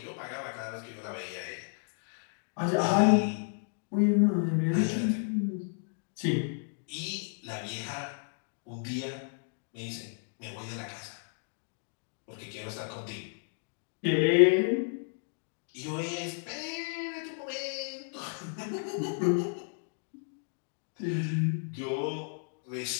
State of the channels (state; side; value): silent; right; 56 dB below the other